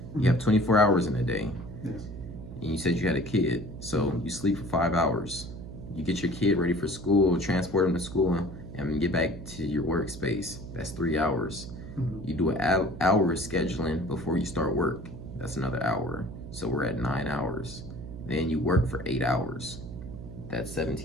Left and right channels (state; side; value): noise; right; hum, 11 dB below the sound